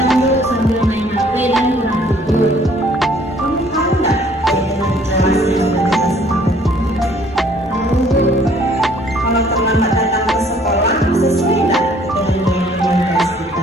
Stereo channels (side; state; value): both; normal; correlation 0.58